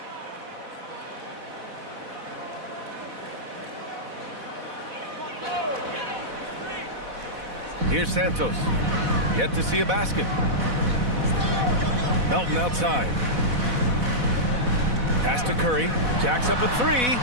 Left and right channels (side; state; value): left; late; 4.1 ms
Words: Here's Santos. Yet to see a basket. Melton outside. Pass to Curry. Jacks up a three.